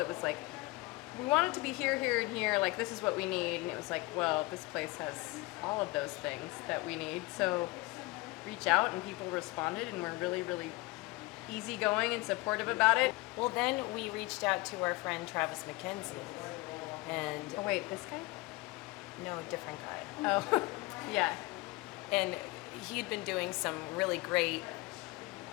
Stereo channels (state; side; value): quieter; right; 22.6 dB